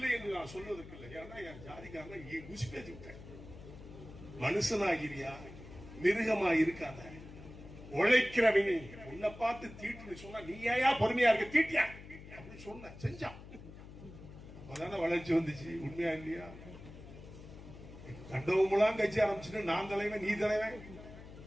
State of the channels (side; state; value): left; noise; hum, 15 dB below the sound